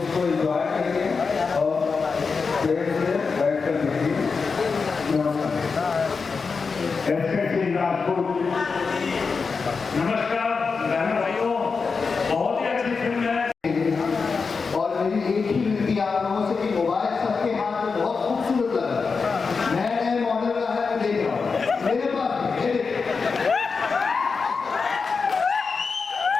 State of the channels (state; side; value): quieter; right; 4.9 dB